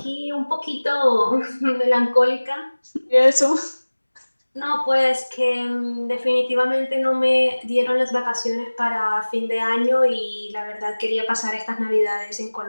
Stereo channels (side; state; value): both; inverted; correlation -1.00